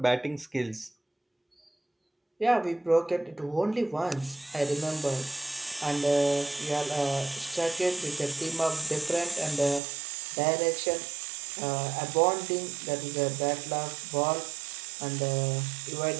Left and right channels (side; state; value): left; drops out; at 9.8 s